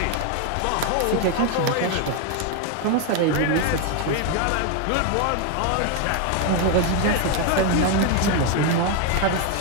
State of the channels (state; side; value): different; both; correlation 0.01